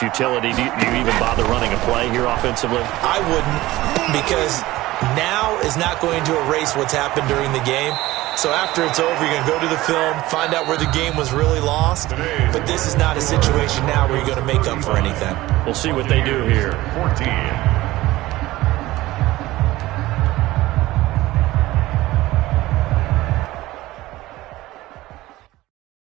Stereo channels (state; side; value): quieter; left; 17.6 dB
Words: Do you even bother running a play here offensively? I wouldn't, because now is not going to erase what's happened during the game. So after it's over, you're going to go to the film, find out where the game was really lost. But this is not a situation now where you're going to make up for anything. We'll see what they do here. 14.